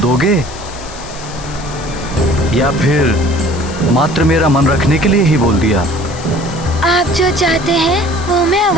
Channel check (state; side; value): noise; left; hiss, 16 dB below the sound